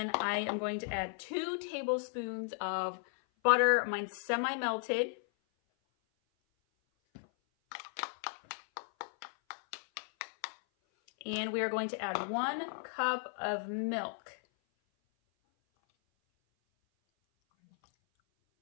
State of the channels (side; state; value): right; silent; 54 dB below the other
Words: I am going to add 2 tablespoons of butter. Mine's semi-melted. And we are going to add 1 cup of milk.